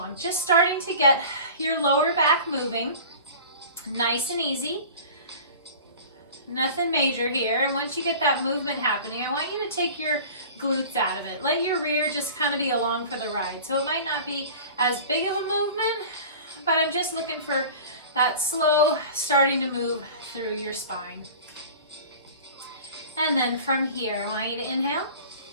Just starting to get your lower back moving. Nice and easy. Nothing major here. And once you get that movement happening, I want you to take your glutes out of it. Let your rear just kind of be along for the ride. So it might not be as big of a movement, but I'm just looking for that slow starting to move through your spine. And then from here, I want you to inhale.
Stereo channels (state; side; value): inverted; both; correlation -0.40